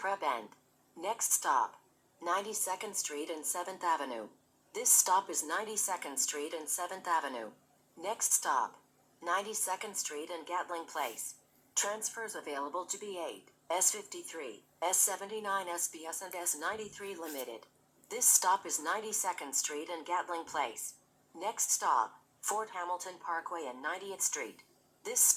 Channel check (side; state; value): both; identical; correlation 1.00